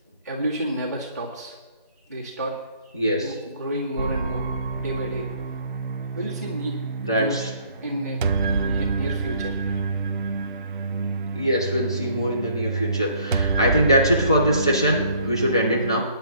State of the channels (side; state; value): both; inverted; correlation -0.60